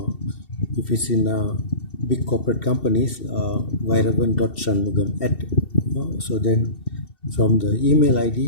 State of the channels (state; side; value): late; right; 2.7 ms